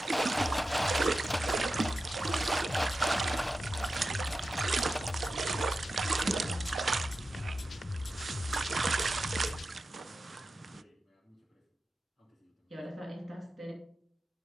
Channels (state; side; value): normal; both; correlation 0.92